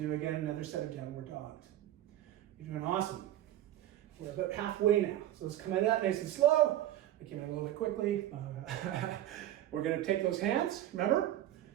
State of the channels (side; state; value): left; quieter; 13.1 dB